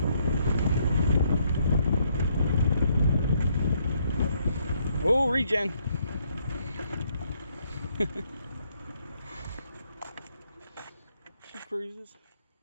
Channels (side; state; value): both; inverted; correlation -0.71